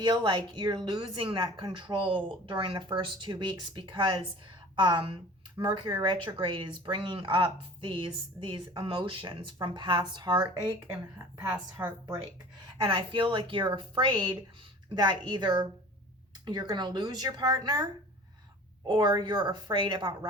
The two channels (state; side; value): normal; both; correlation 0.42